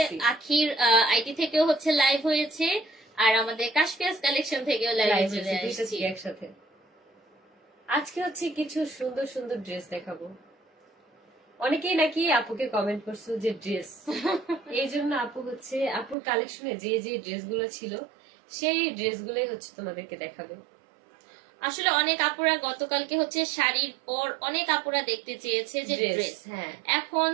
আখির আইডি থেকেও হচ্ছে লাইভ হয়েছে, আর আমাদের কাশফিয়াস কালেকশন থেকেও লাইভ লাইভ চলে হয়েছে দুইটা আসছি। থেকে একসাথে। আজকে হচ্ছে কিছু সুন্দর সুন্দর ড্রেস দেখাবো। অনেকেই নাকি আপুকে কমেন্ট করছো যে ড্রেস, এই জন্য আপু হচ্ছে আপুর কালেকশনে যে যে ড্রেসগুলো ছিল সেই ড্রেসগুলোই হচ্ছে তোমাদেরকে দেখাবে। আসলে অনেক আপুরা গতকালকে হচ্ছে শাড়ির পর অনেক আপুরা দেখতে চেয়েছে যে ড্রেস, হ্যাঁ, এখন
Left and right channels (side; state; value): left; drops out; at 16.2 s